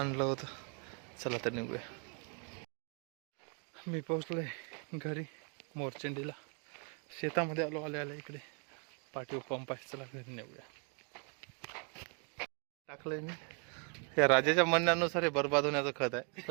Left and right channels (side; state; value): left; quieter; 38.8 dB